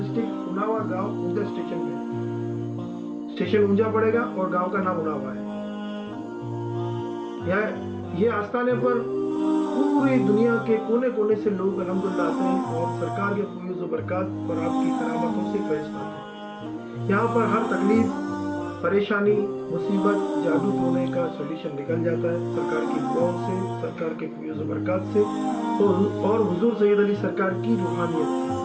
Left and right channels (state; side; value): identical; both; correlation 1.00